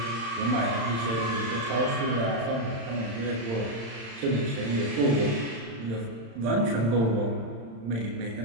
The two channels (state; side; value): late; left; 35 ms